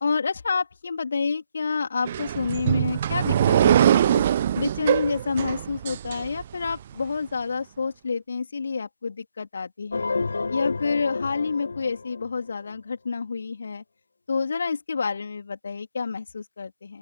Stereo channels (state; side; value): inverted; both; correlation -0.75